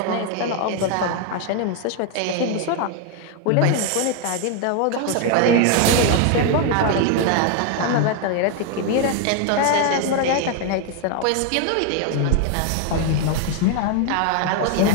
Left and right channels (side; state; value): both; different; correlation 0.01